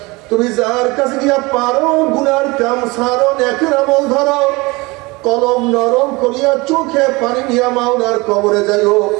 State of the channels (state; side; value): quieter; left; 24.1 dB